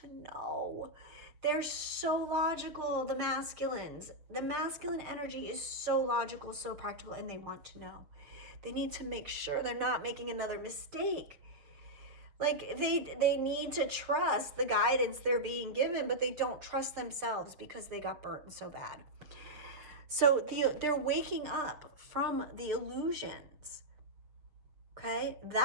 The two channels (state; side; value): late; left; 6.4 ms